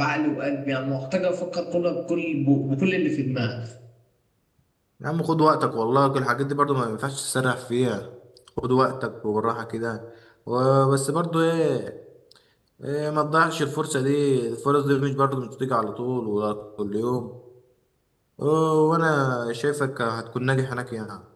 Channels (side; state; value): both; identical; correlation 1.00